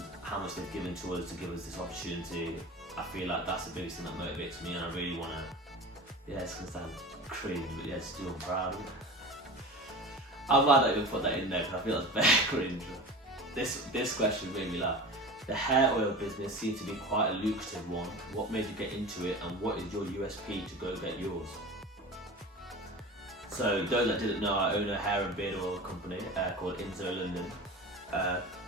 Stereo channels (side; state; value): both; normal; correlation 0.34